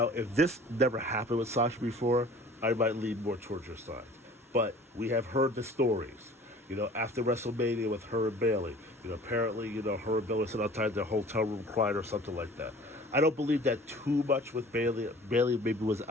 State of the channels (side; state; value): both; normal; correlation 0.46